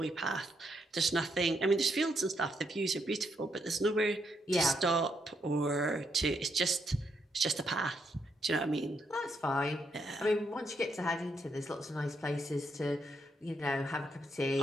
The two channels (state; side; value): normal; both; correlation 0.78